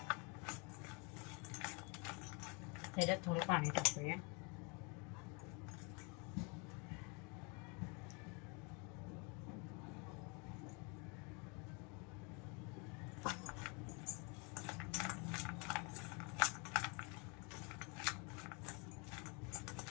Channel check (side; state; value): right; quieter; 32.4 dB